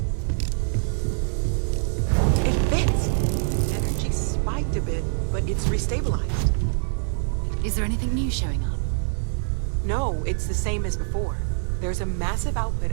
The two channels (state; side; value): silent; left; digital silence